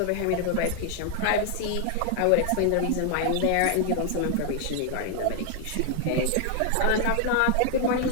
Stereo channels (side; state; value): both; different; correlation 0.00